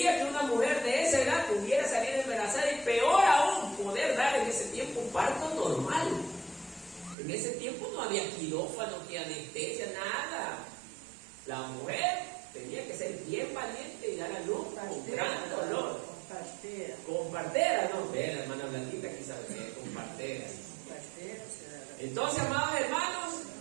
que una mujer de esa edad pudiera salir embarazada y peor aún poder dar en ese tiempo un parto normal. En ese tiempo no había quirófano, ni anestesia, nada. La mujer tenía que ser bien valiente y dar a luz con gran dolor. Con partera, no, ve, la hermana Blanquita aquí sabe que es con partera. Entonces, amados hermanos,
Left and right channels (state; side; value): drops out; left; at 7.2 s